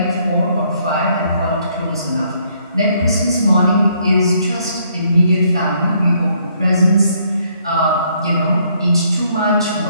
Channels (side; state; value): both; inverted; correlation -0.69